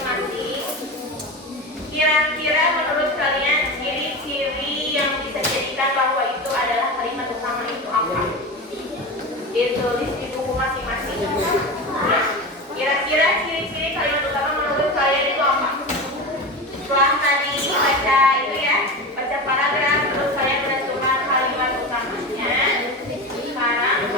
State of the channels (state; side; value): normal; both; correlation 0.25